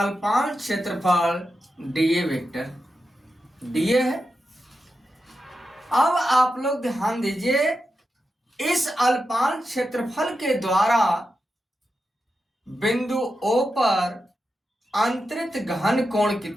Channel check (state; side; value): normal; both; correlation 0.89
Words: क्षेत्रफल डीए वेक्टर डीए है। अब आप लोग ध्यान दीजिए, इस अल्पांश क्षेत्रफल के द्वारा बिंदु ओ पर अंतरित घन कोण